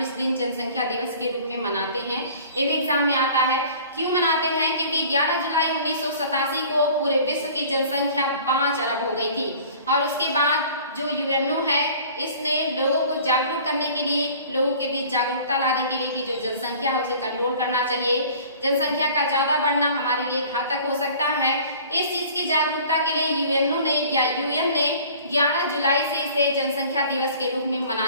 इस दिन जनसंख्या दिवस के रूप में मनाते हैं। ये भी एग्जाम में आता है। क्यों मनाते हैं? क्योंकि 11 जुलाई 1987 को पूरे विश्व की जनसंख्या 5 अरब हो गई थी और उसके बाद जो यूएनओ है इसने लोगों को जागरूक करने के लिए, लोगों के बीच जागरूकता लाने के लिए कि जो जनसंख्या है उसे कंट्रोल करना चाहिए, जनसंख्या का ज्यादा बढ़ना हमारे लिए घातक हो सकता है। इस चीज की जागरूकता के लिए यूएनओ ने या यूएन ने 11 जुलाई से इसे जनसंख्या दिवस के रूप में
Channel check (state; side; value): inverted; both; correlation -0.48